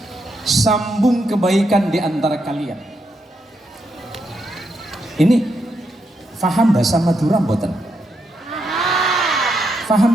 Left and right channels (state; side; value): normal; both; correlation 0.81